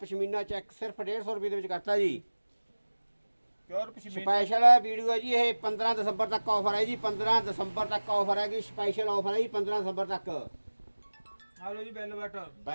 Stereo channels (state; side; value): inverted; both; correlation -1.00